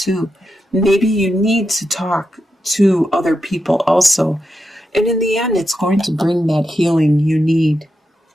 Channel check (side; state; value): both; normal; correlation 0.87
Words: Maybe you need to talk to other people also. And in the end, it's going to bring that healing you need.